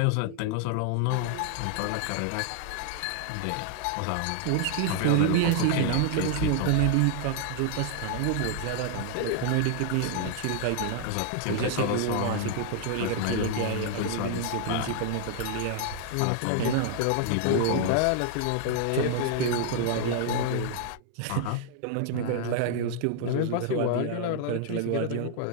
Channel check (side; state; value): both; different; correlation 0.00